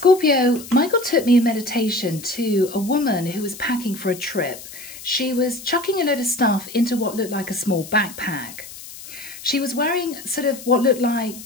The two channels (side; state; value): left; noise; hiss, 15 dB below the sound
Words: Michael took me in meditation to a woman who was packing for a trip. She was chucking a load of stuff into what looked like a small backpack. She was wearing sort of what looked like